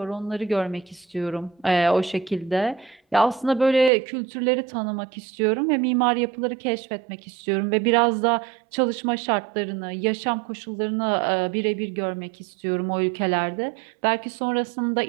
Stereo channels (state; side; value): drops out; left; at 3.9 s